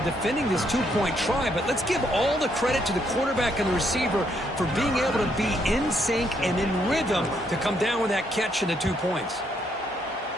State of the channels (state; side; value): normal; both; correlation 0.73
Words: defending this 2-point try, but let's give all the credit to the quarterback and the receiver for being able to be in sync and in rhythm to come down with that catch and the 2 points.